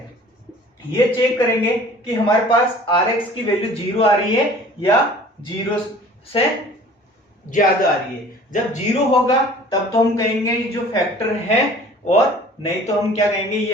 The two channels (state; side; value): normal; both; correlation 0.48